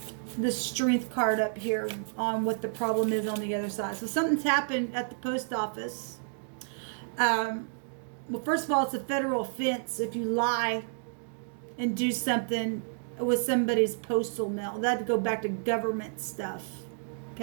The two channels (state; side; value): silent; left; digital silence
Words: the strength card up here on what the problem is on the other side. So something's happened at the post office. Well, first of all, it's a federal offense if you lie and do something with somebody's postal mail. That'd go back to government stuff.